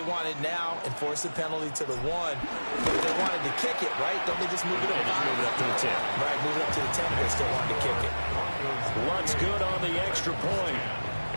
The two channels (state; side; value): inverted; both; correlation -1.00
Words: wanted now and force the penalty to the 1, but if they wanted to kick it, right, don't they just move it up? Just move it up to the 10. Right, move it up to the 10 if they still wanted to kick it. Luntz good on the extra point.